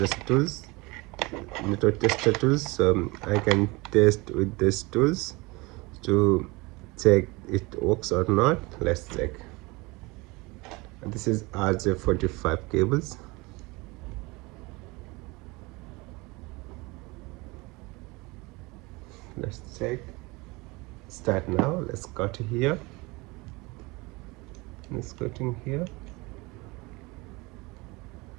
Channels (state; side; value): quieter; left; 24.5 dB